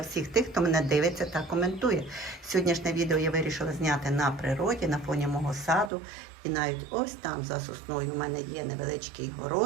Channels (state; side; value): drops out; left; at 5.9 s